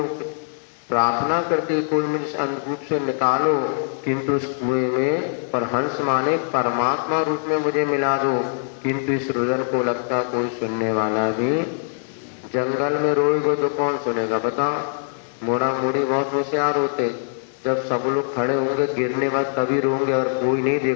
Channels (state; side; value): silent; right; digital silence